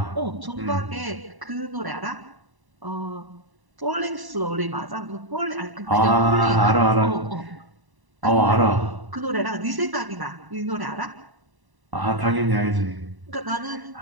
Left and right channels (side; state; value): left; late; 1.0 ms